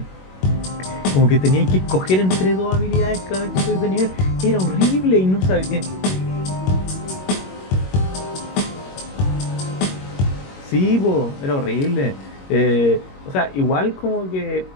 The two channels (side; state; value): right; late; 21 ms